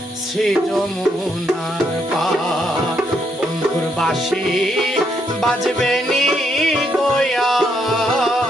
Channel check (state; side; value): normal; both; correlation 0.75